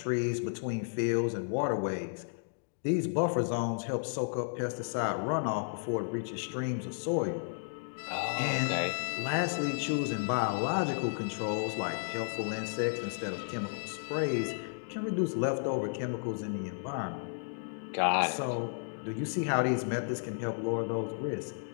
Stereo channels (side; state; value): right; silent; digital silence